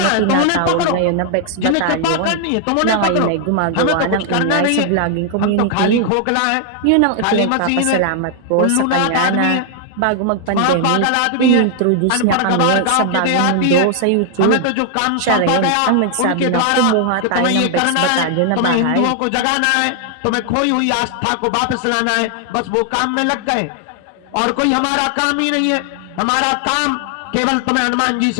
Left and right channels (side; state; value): both; different; correlation 0.00